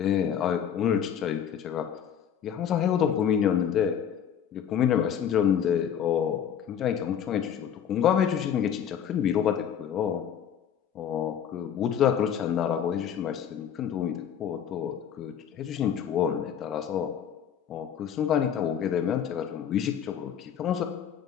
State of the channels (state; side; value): quieter; right; 8.8 dB